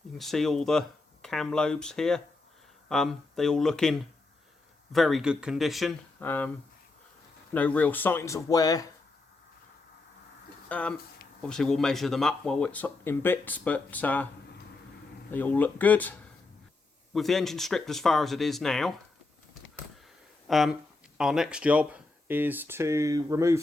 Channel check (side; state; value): right; quieter; 3.4 dB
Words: you can see all the cam lobes here. They all look in very good condition. No real signs of wear. Obviously we'll measure them up while it's in bits, but they all look good. With the engine stripped as far as it is now, our next job is to